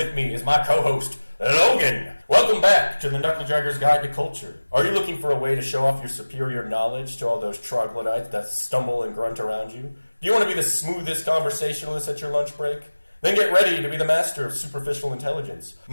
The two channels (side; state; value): both; inverted; correlation -1.00